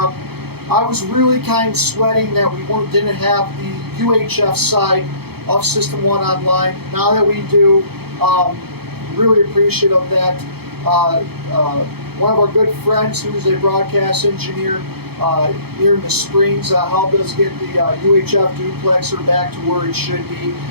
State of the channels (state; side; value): late; left; 0.96 ms